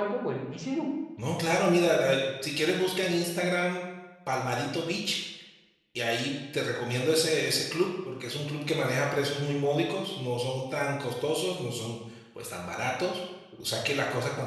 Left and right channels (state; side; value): identical; both; correlation 1.00